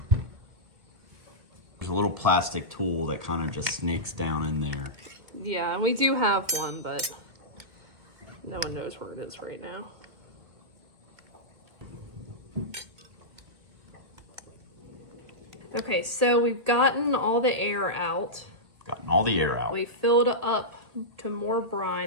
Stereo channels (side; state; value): left; late; 1.6 ms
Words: There's a little plastic tool that kind of just snakes down in there. Yeah, and we do have one, but no one knows where it is right now. Okay, so we've gotten all the air out. Gotten all the air out. We filled up to more